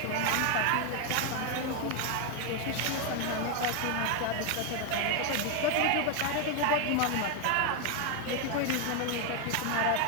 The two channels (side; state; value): both; different; correlation 0.01